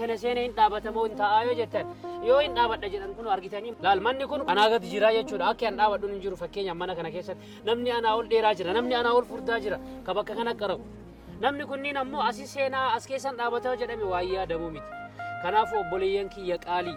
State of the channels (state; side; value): identical; both; correlation 1.00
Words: kana seenee hin dhaabatamoo hin taa'aa yoo jettan yoo hin dhaabadha jedhan kun argitanii laal manni kun anaa gadi jira jechuudha akka hin dhaabadhuun hin jiru fakkeenyaaf mana kana keessatti namni anaa ol dheeraa jira namni anaa ol furdaa jira ka bakka kana qarabu namni kunniin ammoo asii seenaa as keessan dhaabataa jedhame waayyaa yaadamuu miti kanaafuu obboleeyyan kiyya qaalii